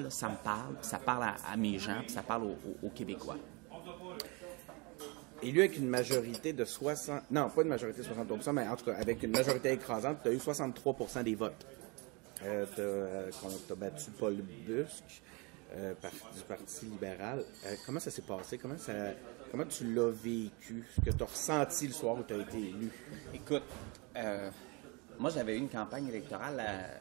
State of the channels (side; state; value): left; quieter; 29.0 dB